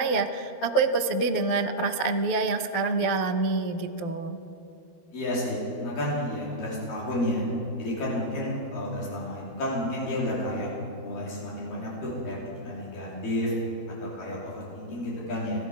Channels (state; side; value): late; right; 12 ms